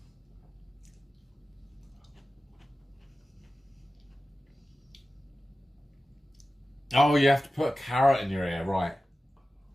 Oh, you have to put a carrot in your ear, right.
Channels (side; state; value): both; normal; correlation 0.95